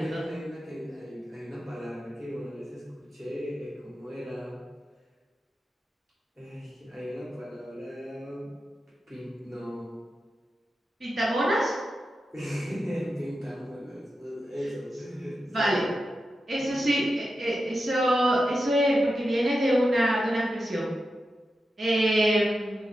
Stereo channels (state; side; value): normal; both; correlation 0.90